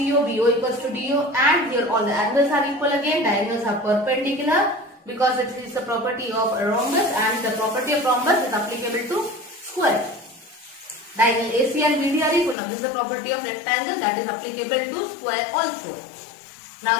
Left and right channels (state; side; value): drops out; right; at 12.6 s